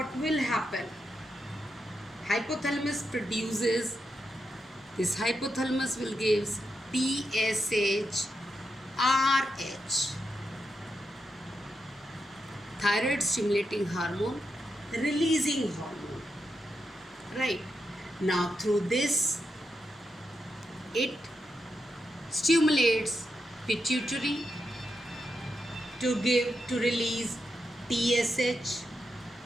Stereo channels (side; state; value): both; normal; correlation 0.85